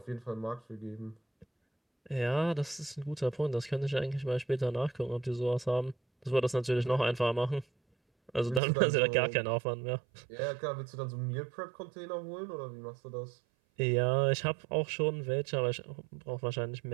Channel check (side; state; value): left; drops out; at 8.6 s